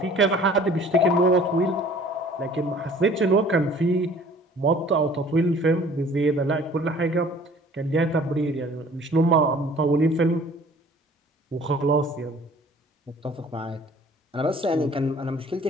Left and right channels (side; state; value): both; normal; correlation 0.51